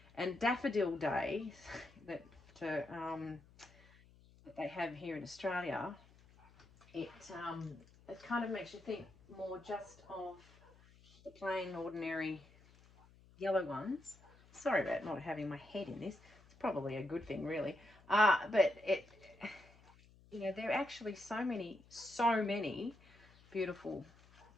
And Daffodil Day that they have here in Australia, it kind of makes you think more just of the plain, ordinary yellow ones. Sorry about not having my head in this. It's probably a good thing, really. But it, you know, there are actually so many beautiful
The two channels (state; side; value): noise; left; hum, 25 dB below the sound